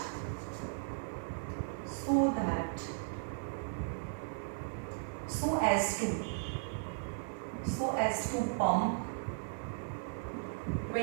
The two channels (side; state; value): left; silent; digital silence